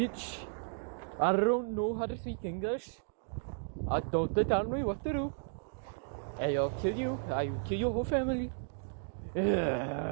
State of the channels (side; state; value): left; silent; digital silence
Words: I don't know how to speak English. I don't tell me what to do. And I'll kill you. I will kill your whole family.